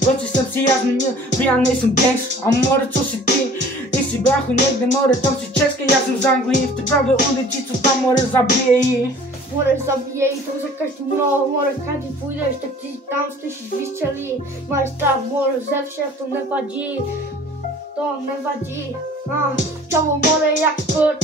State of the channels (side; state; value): both; normal; correlation 0.49